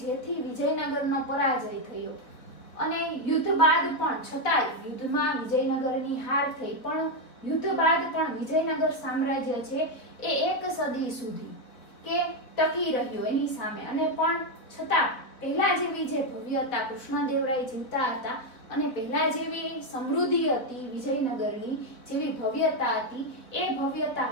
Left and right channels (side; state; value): right; late; 3.7 ms